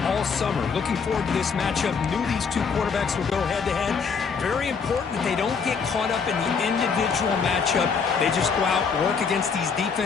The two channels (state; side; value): quieter; right; 5.7 dB